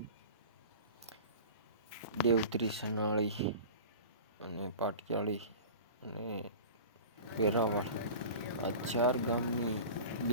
દેવધરી, સનાળી અને પાટિયાળી અને વેરાવળ આ 4 ગામની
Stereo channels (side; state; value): both; inverted; correlation -0.36